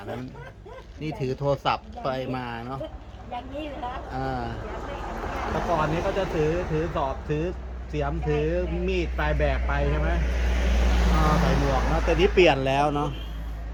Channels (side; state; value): both; identical; correlation 1.00